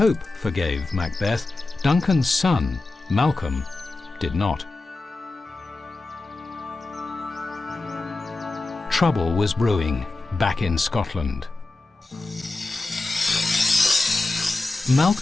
forgave Macbeth, Duncan's son, Malcolm, did not. Trouble was brewing back in Scotland.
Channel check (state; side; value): quieter; right; 3.1 dB